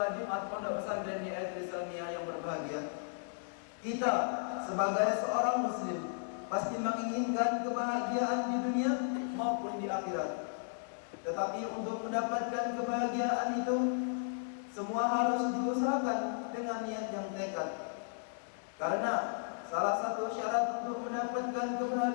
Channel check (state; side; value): silent; right; digital silence